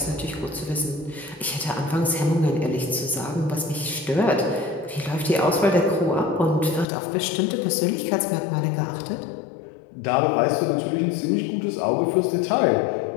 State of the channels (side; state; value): right; drops out; at 6.9 s